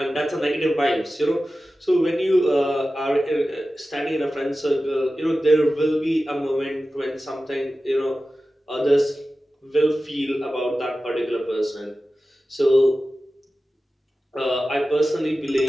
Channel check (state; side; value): normal; both; correlation 0.95